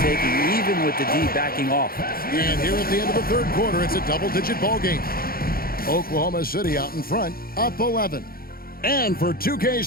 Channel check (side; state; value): right; late; 0.43 ms